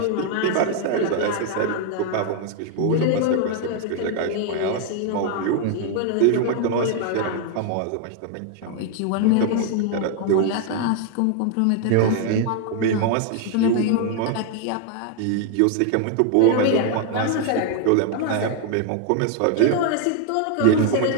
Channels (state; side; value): different; both; correlation 0.01